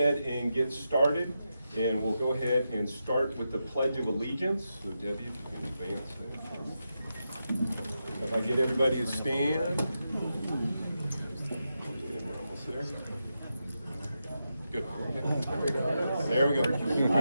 and get started, and we'll go ahead and start with the Pledge of Allegiance. So Debbie, if you can advance that. If I get everybody to stand. Yeah, we're almost there. Good. There we go.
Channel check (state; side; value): inverted; both; correlation -0.87